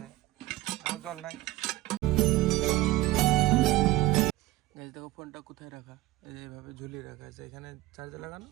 জল নাই। গ্যাস দেখো ফোনটা কোথায় রাখা, এই যে এইভাবে ঝুলিয়ে রাখা আছে, এখানে চার্জে লাগানো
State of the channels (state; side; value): quieter; left; 17.2 dB